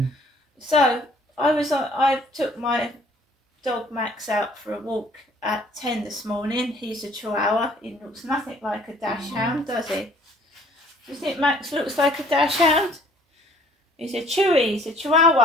So I took my dog Max out for a walk at 10 this morning. He's a Chihuahua. He looks nothing like a Dachshund, does he? Do you think Max looks like a Dachshund? He's a Chewy. He's a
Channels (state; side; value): normal; both; correlation 0.57